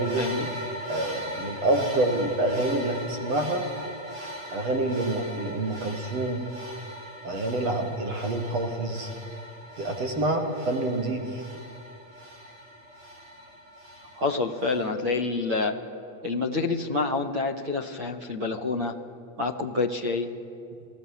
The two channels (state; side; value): late; left; 8.5 ms